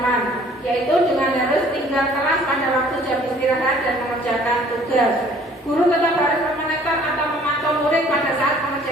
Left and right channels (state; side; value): normal; both; correlation 0.55